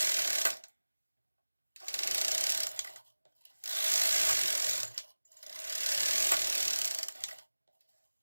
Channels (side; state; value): both; inverted; correlation -1.00